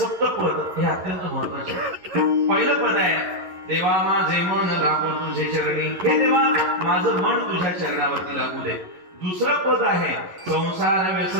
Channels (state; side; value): late; left; 11 ms